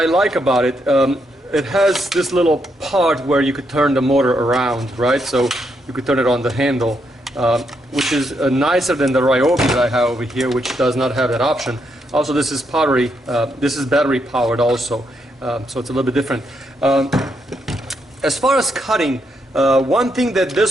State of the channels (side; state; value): both; normal; correlation 0.79